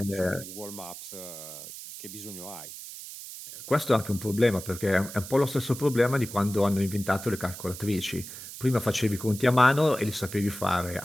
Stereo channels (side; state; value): right; noise; hiss, 12 dB below the sound